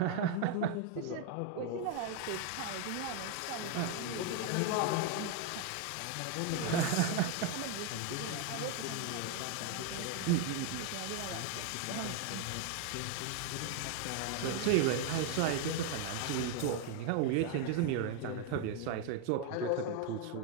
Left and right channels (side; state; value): both; different; correlation 0.01